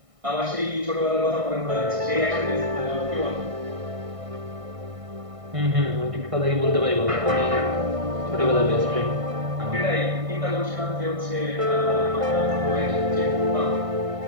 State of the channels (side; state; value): left; late; 1.6 ms